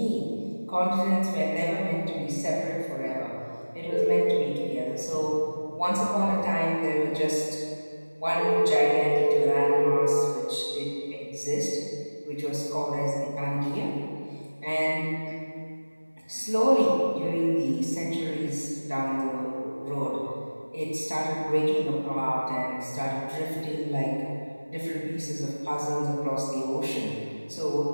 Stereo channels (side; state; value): both; inverted; correlation -1.00